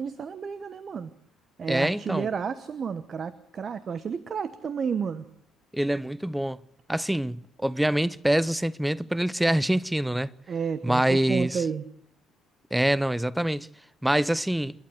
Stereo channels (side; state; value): both; normal; correlation 0.97